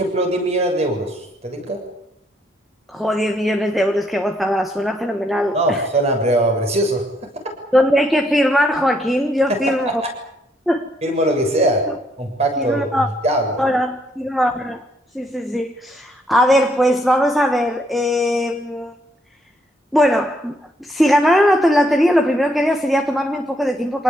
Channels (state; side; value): normal; both; correlation 0.71